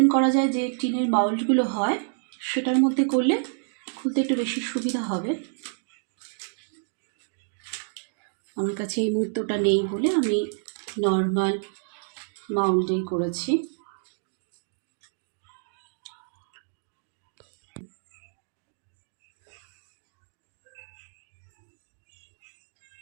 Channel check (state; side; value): silent; left; digital silence